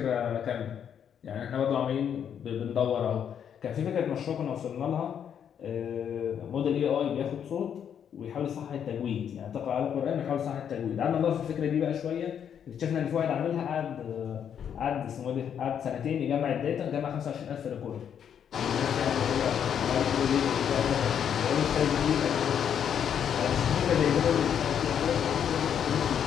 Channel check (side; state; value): right; quieter; 8.5 dB